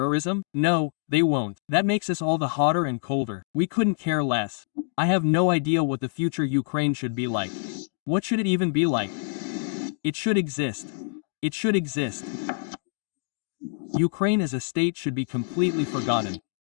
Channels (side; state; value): right; silent; digital silence